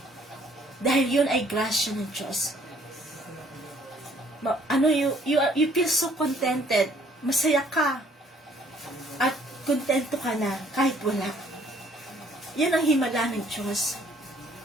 Dahil yun ay grasya ng Diyos. You feel so contented. Masaya ka. At kontento ka na kahit wala. Yan ang himala ng Diyos.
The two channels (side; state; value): both; normal; correlation 0.61